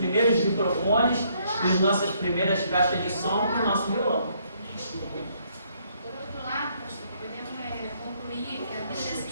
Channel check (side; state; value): both; inverted; correlation -0.69